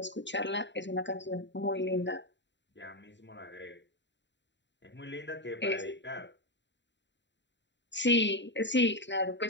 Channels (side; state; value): right; late; 0.52 ms